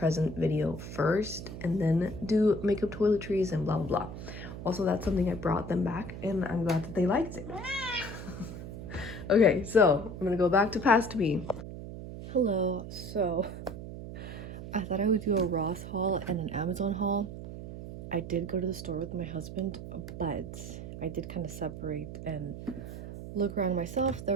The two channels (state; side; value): noise; right; hum, 10 dB below the sound